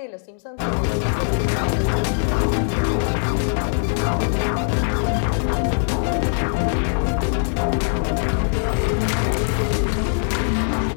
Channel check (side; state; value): right; silent; 65 dB below the other